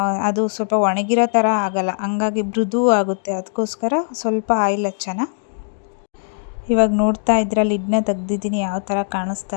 ಅದು ಸ್ವಲ್ಪ ಒಣಗಿರೋ ಥರ ಆಗಲ್ಲ, ಹಂಗಾಗಿ ಮೃದು ಆಗುತ್ತೆ. ಅದಕ್ಕೋಸ್ಕರ ಸ್ವಲ್ಪ ಆಯಿಲ್ ಹಚ್ಚೋಣ. ಇವಾಗ ನೋಡ್ತಾ ಇದ್ರೆ ಲಿಡ್ನ ತೆಗ್ದಿದ್ದೀನಿ, ಯಾವ ಥರ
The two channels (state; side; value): silent; right; digital silence